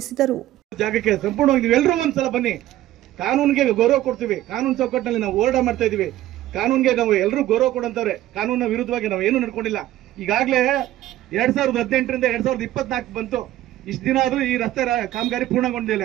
ಜಾಗಕ್ಕೆ ಸಂಪೂರ್ಣವಾಗಿ ನೀವೆಲ್ಲರೂ ಒಂದ್ಸಲ ಬನ್ನಿ. ಕಾನೂನಿಗೆ ಗೌರವ ಕೊಡ್ತೀವಿ. ಕಾನೂನು ಚೌಕಟ್ಟಿನಲ್ಲಿ ನಾವು ಹೋರಾಟ ಮಾಡ್ತಾ ಇದೀವಿ. ಕಾನೂನಿಗೆ ನಾವು ಎಲ್ಲರೂ ಗೌರವ ಕೊಡಂತವ್ರೆ. ಕಾನೂನಿನ ವಿರುದ್ಧವಾಗಿ ನಾವು ಏನು ನಡ್ಕೊಂಡಿಲ್ಲ. ಈಗಾಗಲೇ 2018ರಿಂದ 2024 ಬಂತು. ಇಷ್ಟು ದಿನ ಆದ್ರೂ ಈ ರಸ್ತೆ ಕಾಮಗಾರಿ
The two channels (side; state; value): left; quieter; 14.3 dB